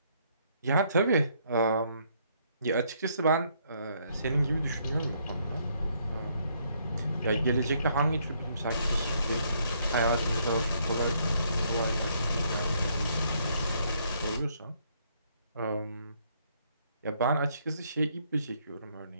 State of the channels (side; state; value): both; inverted; correlation -0.69